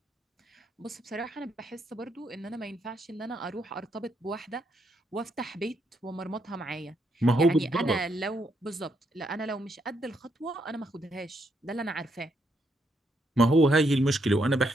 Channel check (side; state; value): both; normal; correlation 0.77